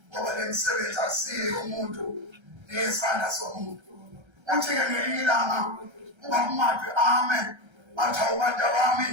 ngoba le msebenzi asiyo umuntu nesandla somuntu uthi-ke ngelinye ilanga ubaba umadwe amen bathi awubantu bami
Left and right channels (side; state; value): left; late; 1.3 ms